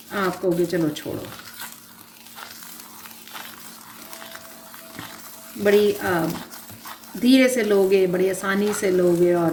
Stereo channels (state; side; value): identical; both; correlation 1.00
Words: आप कहोगे चलो छोड़ो, बड़ी धीरे से लोगे, बड़ी आसानी से लोगे